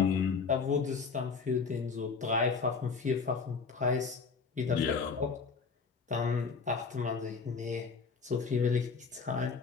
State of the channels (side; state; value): right; quieter; 5.1 dB